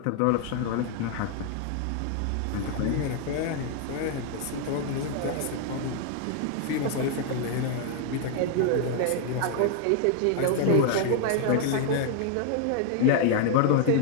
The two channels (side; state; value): both; different; correlation 0.00